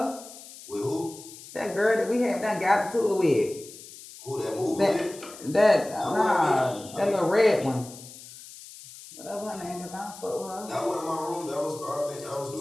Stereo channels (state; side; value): noise; left; hiss, 17 dB below the sound